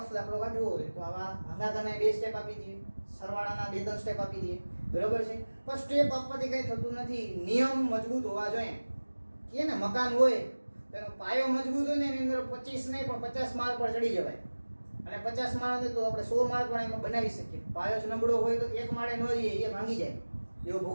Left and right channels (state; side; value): inverted; both; correlation -1.00